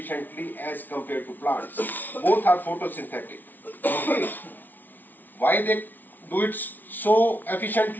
as compared to plants. Both are photosynthetic. Okay. Why they do it so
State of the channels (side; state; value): right; late; 0.085 ms